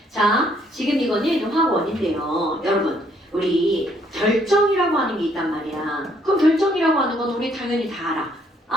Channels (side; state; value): both; normal; correlation 0.67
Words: 자, 지금 이거는 화원인데요. 여러분, 우리 결정이라고 하는 게 있단 말이야. 그럼 결정이라고 하는 건 우리 당연히 다 알아.